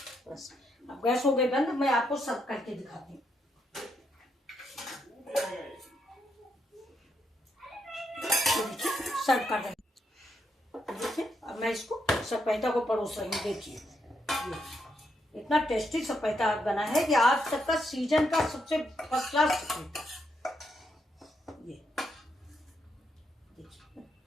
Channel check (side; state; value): both; normal; correlation 0.79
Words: बस अब गैस हो गई बंद। मैं आपको सर्व करके दिखाती हूँ। सर्व कर दें। देखिए अब मैं इसको सपेटा को परोस रही हूँ। देखिए इतना टेस्टी सपेटा बना है कि आज तक का सीजन का सबसे फर्स्ट क्लास सपेटा। ये देखिए